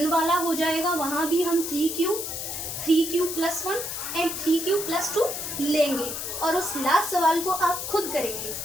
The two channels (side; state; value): left; noise; hiss, 5 dB below the sound